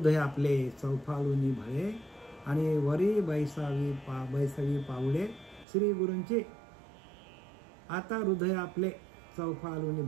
आपले चौफाळूनी भळे आणि वरी बैसावी पावले श्री गुरूंचे. आता हृदय आपले चौफाळूनी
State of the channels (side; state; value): left; drops out; at 5.7 s